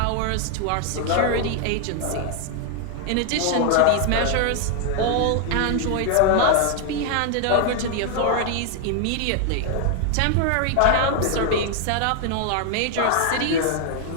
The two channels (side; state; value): both; different; correlation 0.00